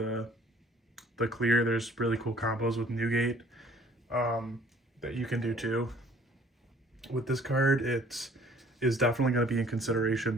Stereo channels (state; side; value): normal; both; correlation 0.55